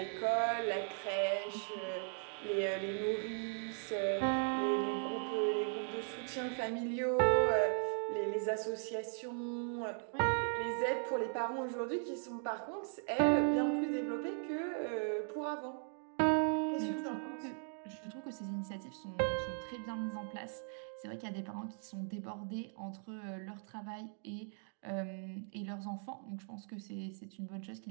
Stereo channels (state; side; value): silent; left; 52 dB below the other